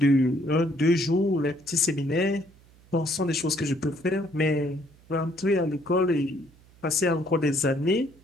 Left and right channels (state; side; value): noise; right; hum, 27 dB below the sound